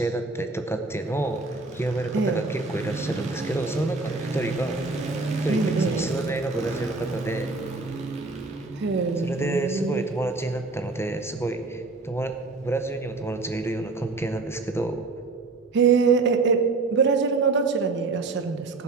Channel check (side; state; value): left; quieter; 3.6 dB